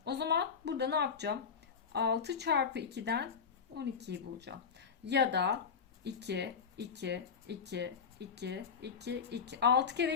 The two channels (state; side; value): quieter; right; 6.2 dB